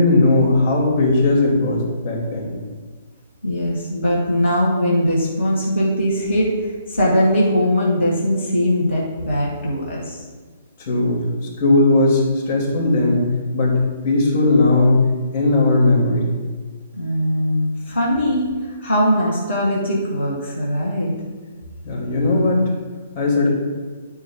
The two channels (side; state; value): both; inverted; correlation -0.73